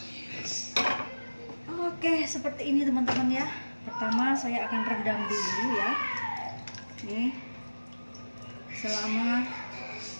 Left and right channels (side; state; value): both; inverted; correlation -1.00